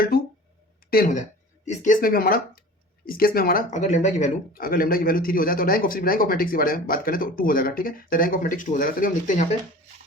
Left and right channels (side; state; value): both; normal; correlation 0.40